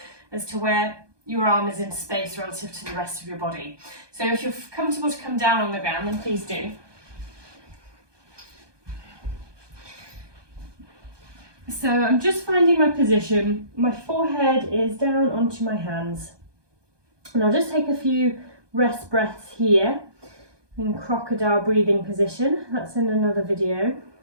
as to where your arm is in space relative to the rest of your body. So if you're comfortable to come down on the ground, then please do. So I'm just finding my position. My forehead is down onto my hands. And I'll just take a few rest breaths here in crocodile breathing position. That's in another video.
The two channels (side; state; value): left; late; 1.2 ms